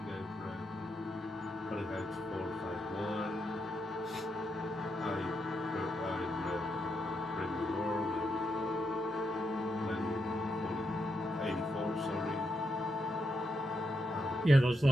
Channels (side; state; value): both; normal; correlation 0.82